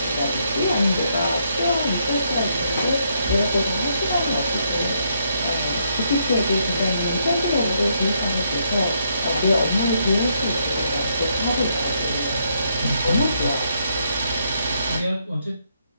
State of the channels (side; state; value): both; inverted; correlation -0.75